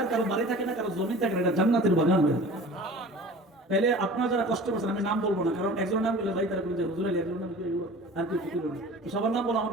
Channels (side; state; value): both; normal; correlation 0.41